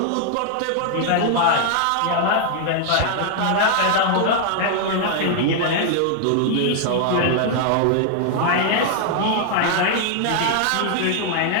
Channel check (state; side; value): different; both; correlation 0.00